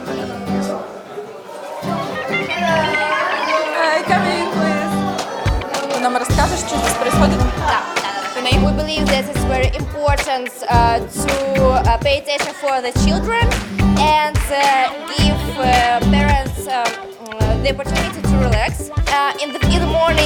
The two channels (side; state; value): both; identical; correlation 1.00